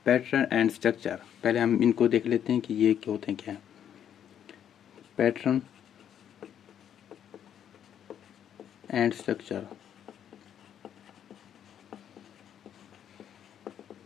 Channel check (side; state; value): right; quieter; 9.5 dB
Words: पैटर्न एंड स्ट्रक्चर, पहले हम इनको देख लेते हैं कि ये क्या होते हैं, क्या है पैटर्न एंड स्ट्रक्चर।